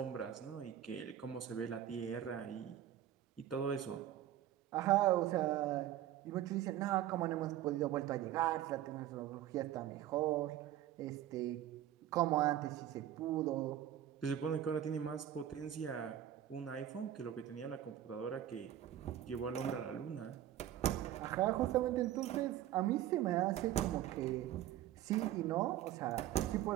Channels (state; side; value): quieter; left; 11.9 dB